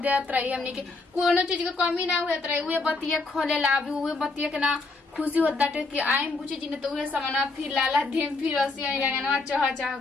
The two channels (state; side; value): quieter; right; 3.5 dB